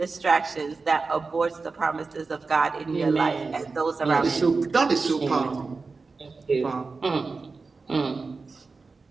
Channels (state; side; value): quieter; left; 4.2 dB